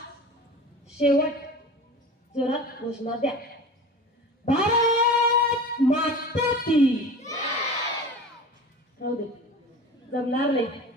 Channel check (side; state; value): both; normal; correlation 0.36